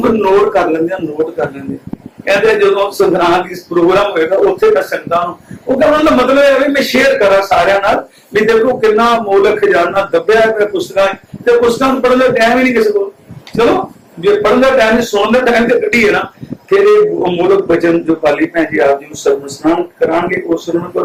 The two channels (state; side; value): identical; both; correlation 1.00